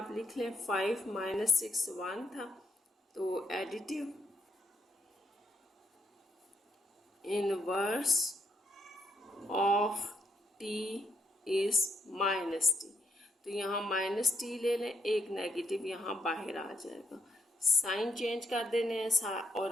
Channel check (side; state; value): both; normal; correlation 0.77